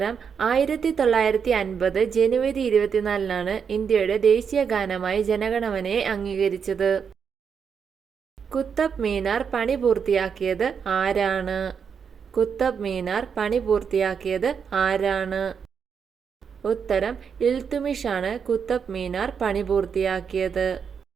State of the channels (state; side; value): quieter; left; 6.7 dB